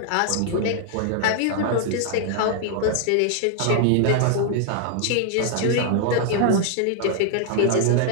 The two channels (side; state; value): both; different; correlation 0.00